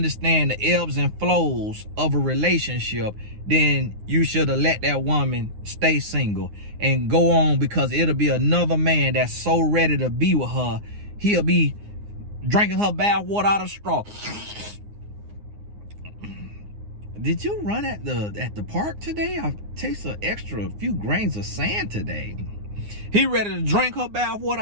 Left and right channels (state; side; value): late; left; 9.7 ms